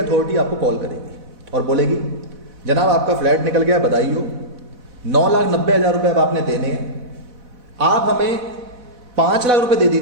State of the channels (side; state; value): left; late; 4.1 ms